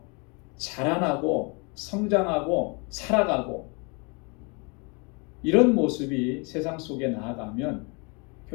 자라나고 성장하고 살아가고 이런 모습이 세상 속에 나아가면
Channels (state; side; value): quieter; right; 31.8 dB